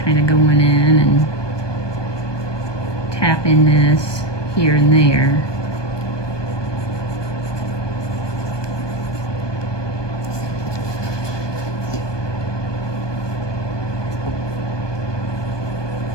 kind of going in and tapping this here and there.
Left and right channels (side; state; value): right; late; 1.2 ms